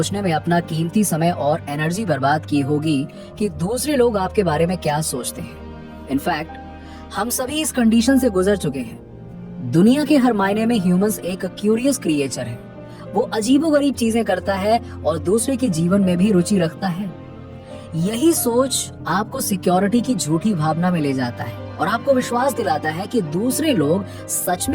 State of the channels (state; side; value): identical; both; correlation 1.00